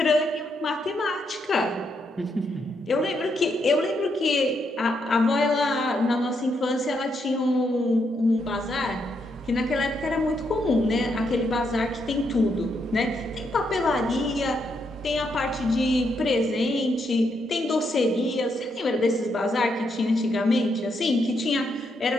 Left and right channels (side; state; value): both; normal; correlation 0.78